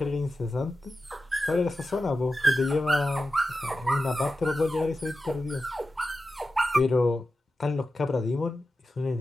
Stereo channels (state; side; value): normal; both; correlation 0.92